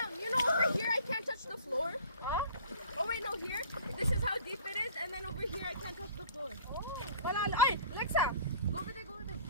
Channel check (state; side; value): inverted; both; correlation -0.45